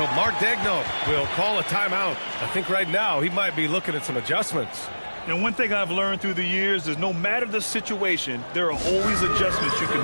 Mark Daigneault will call a timeout. I think right now he might be looking at some adjustments. And one thing I've learned through the years is no matter the situation, there are always adjustments you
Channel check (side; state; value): both; inverted; correlation -1.00